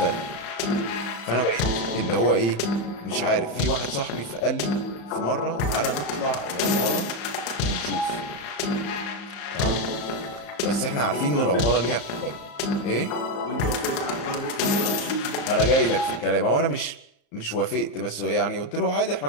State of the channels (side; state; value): right; late; 35 ms